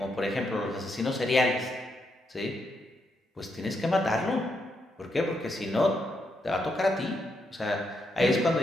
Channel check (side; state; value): both; normal; correlation 0.80